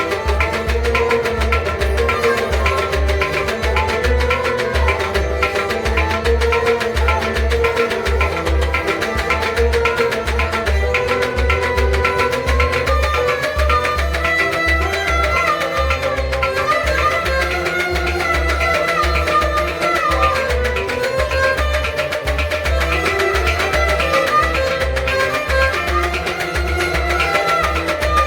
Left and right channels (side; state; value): both; identical; correlation 1.00